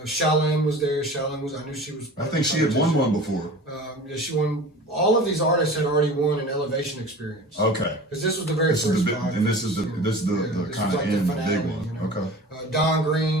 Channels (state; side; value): normal; both; correlation 0.39